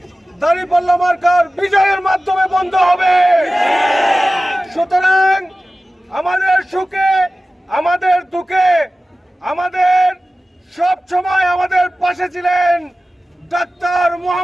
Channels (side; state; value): both; normal; correlation 0.96